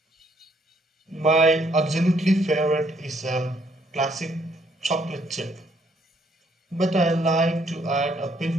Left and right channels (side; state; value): both; normal; correlation 0.69